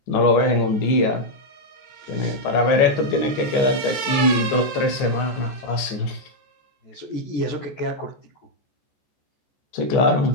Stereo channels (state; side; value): late; right; 15 ms